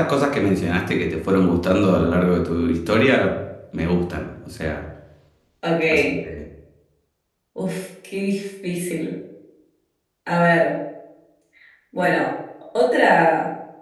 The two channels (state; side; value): identical; both; correlation 1.00